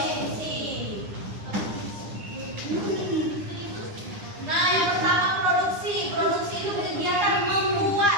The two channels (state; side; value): late; left; 9.9 ms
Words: Nah, yang pertama produksi. Produksi itu kegiatan